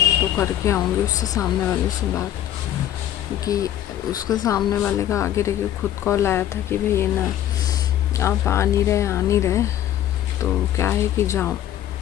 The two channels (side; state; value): right; quieter; 11.7 dB